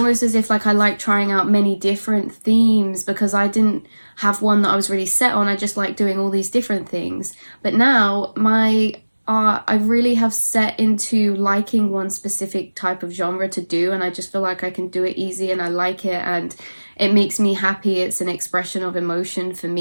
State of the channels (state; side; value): inverted; both; correlation -1.00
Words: as if like I like trying out many different themes because I didn't have one that I was really set on. I just like doing all these different things. But now my art, I really have set into liking one specific type of genre to do, and I just feel like I can do it easy and I like it and it makes me happy. It's an expression of emotion for